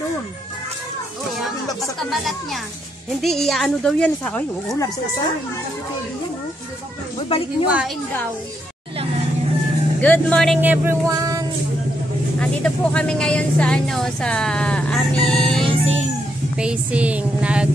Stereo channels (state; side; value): normal; both; correlation 0.78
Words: Basta balat niya. Hindi, iaano daw yan sa... Ay, oo, labsak sa. Uy, balik nyo. Iwain daw. Good morning everyone. Andito po kami ngayon sa sa aming pacing.